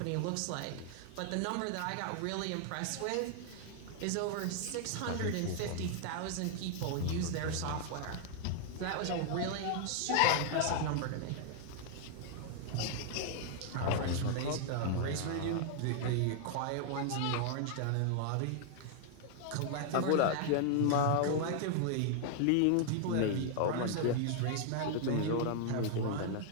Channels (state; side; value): different; both; correlation 0.00